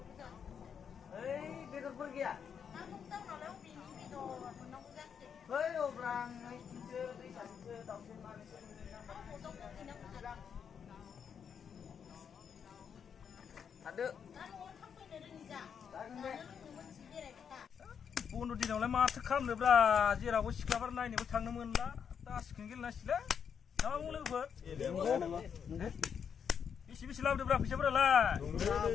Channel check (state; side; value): quieter; right; 7.3 dB